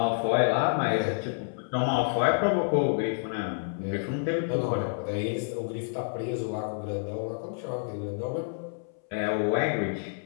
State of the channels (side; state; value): right; silent; 59 dB below the other